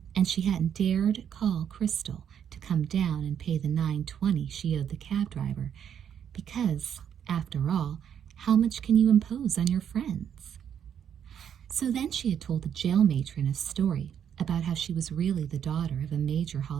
and she hadn't dared call Crystal to come down and pay the $9.20 she owed the cab driver, because, after all, how much can you impose on your friends? So then she had told the jail matron a story about how she was really the daughter of a major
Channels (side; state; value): left; quieter; 8.8 dB